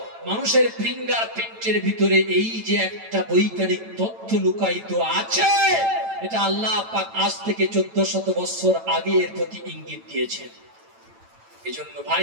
মানুষের ফিঙ্গার প্রিন্টের ভিতরে এই যে একটা বৈজ্ঞানিক তথ্য লুকায়িত আছে, এটা আল্লাহ পাক আজ থেকে 1400 বছর আগে এর প্রতি ইঙ্গিত দিয়েছেন। এজন্য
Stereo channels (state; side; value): late; left; 9.0 ms